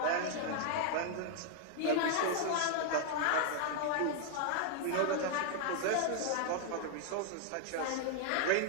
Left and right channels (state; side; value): different; both; correlation 0.00